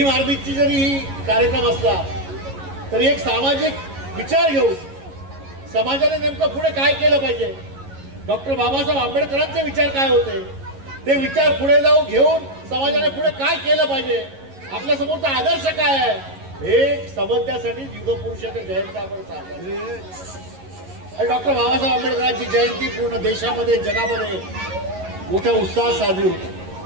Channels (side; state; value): left; late; 11 ms